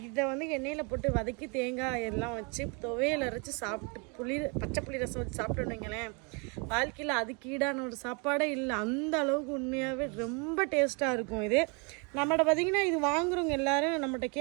இதை எண்ணெயில் போட்டு வதக்கி தேங்காய் எல்லாம் வச்சு துவையல் அரைச்சி சாப்பிட்டு பச்சை புளி ரசம் வச்சு சாப்பிட்டோன்னு வைங்களேன், வாழ்க்கையில் அதுக்கு ஈடான ஒரு சாப்பாடே இல்லை. அந்த அளவுக்கு உண்மையாகவே ரொம்ப டேஸ்ட்டாக இருக்கும். இது நம்மகிட்ட பார்த்திங்கன்னா இது வாங்குறவங்க எல்லோரும் நம்மகிட்ட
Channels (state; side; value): quieter; left; 33.0 dB